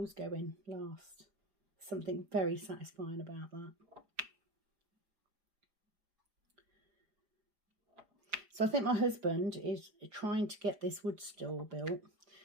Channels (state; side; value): late; left; 4.9 ms